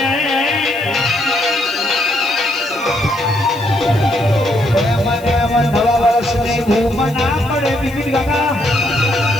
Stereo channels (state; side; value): noise; left; hiss, 22 dB below the sound